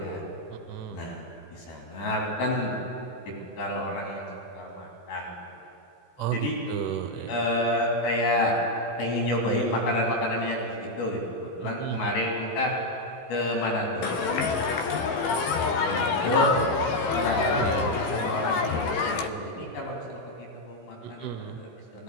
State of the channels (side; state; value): right; late; 16 ms